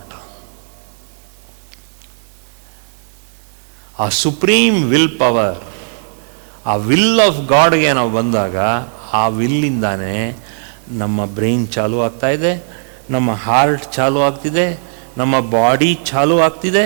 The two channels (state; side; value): silent; left; 60 dB below the other